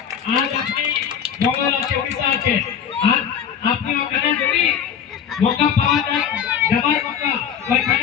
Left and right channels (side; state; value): right; quieter; 8.2 dB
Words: আজ আপনি বঙ্গাল আছে, উড়িষ্যা আছে, আর আপনি ওখানে যদি মৌকা পাওয়া যায় যাবার মৌকা,